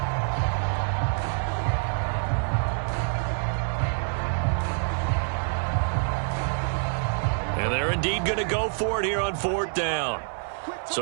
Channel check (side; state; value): left; silent; 61 dB below the other